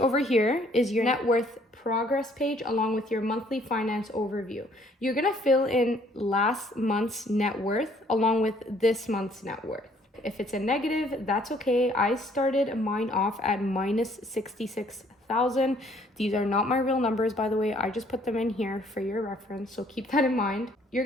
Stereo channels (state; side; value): normal; both; correlation 0.62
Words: here is your net worth progress page along with your monthly finance overview. You're gonna fill in last month's net worth along with this month's net worth. If it's a negative, that's okay. I started mine off at minus 66,000. These are not my real numbers, by the way. I just put them in here for your reference, so keep that in mind. You're